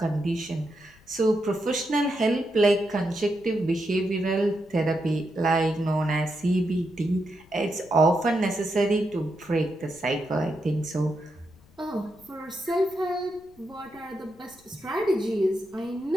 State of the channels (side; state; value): left; noise; rumble, 28 dB below the sound